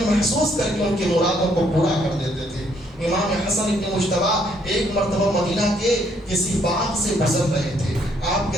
محسوس کر کے ان کی مرادوں کو پورا کر دیتے تھے۔ امام حسن ابن مجتبی ایک مرتبہ مدینہ کے کسی باغ سے گزر رہے تھے، آپ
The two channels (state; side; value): normal; both; correlation 0.69